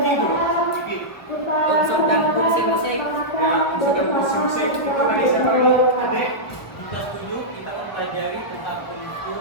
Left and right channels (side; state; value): right; late; 1.4 ms